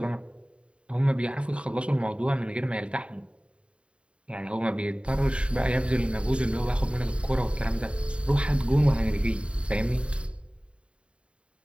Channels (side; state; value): left; late; 0.057 ms